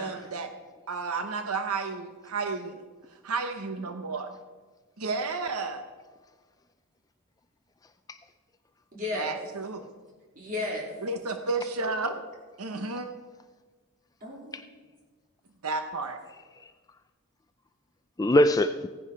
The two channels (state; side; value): normal; both; correlation 0.30